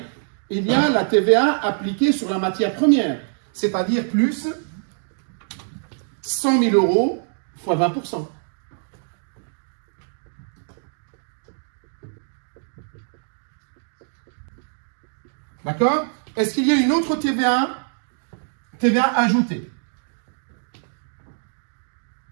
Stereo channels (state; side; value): silent; left; digital silence